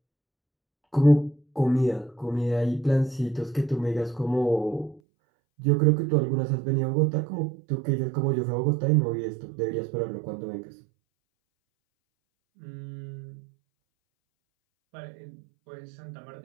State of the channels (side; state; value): left; drops out; at 5.0 s